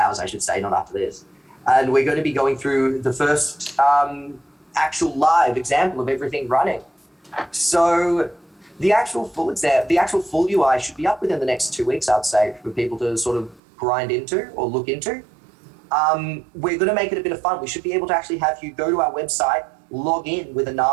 I should say, not after this. And we're going to be going through the first actual live example of everything running. So the actual full UI should be up within the next 2 weeks, I'd say, for people to sort of grind into or look into. We're going to make it a bit of fun. We should be able to actually have you go to our website, log in with a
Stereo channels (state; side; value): drops out; left; at 13.6 s